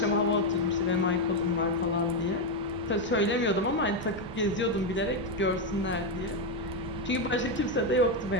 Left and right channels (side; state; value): both; normal; correlation 0.05